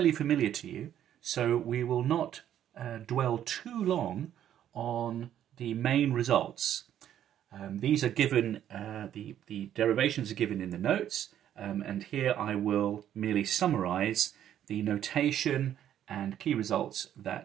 familiar to you, so we will not dwell too long on the main results. These are given, the derivations are given in the notes, and here I will merely summarize the notation and key results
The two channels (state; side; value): quieter; left; 10.7 dB